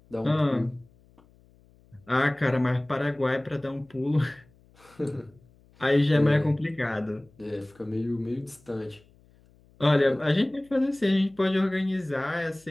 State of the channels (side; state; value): left; noise; hum, 30 dB below the sound